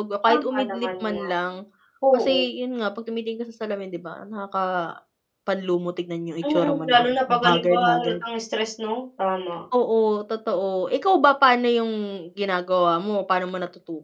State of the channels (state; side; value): identical; both; correlation 1.00